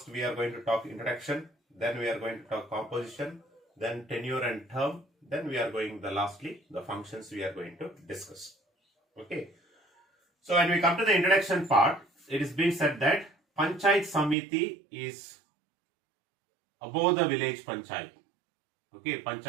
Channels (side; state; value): left; drops out; at 14.4 s